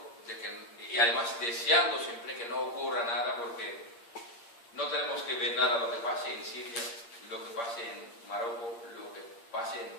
y además deseando siempre que no ocurra nada, porque no tenemos que ver nada lo que pase en Siria, lo que pase en Marruecos, lo que pase en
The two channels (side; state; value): right; late; 8.6 ms